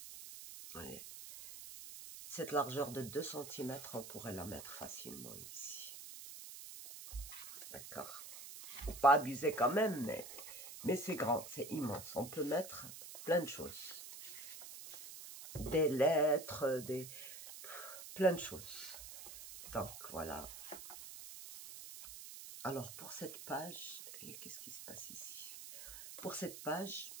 ouais. Cette largeur de 2 cm, on pourrait la mettre facilement ici. D'accord? Faut pas abuser quand même, mais c'est grand, c'est immense. On peut mettre plein de choses. Des lettres, plein de choses. Donc, voilà. Alors, pour cette page, qu'est-ce qui se passe ici? Pour cette page,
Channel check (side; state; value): right; noise; hiss, 12 dB below the sound